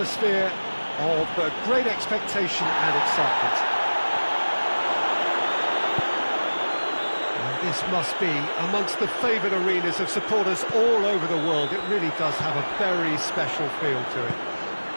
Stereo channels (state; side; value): inverted; both; correlation -1.00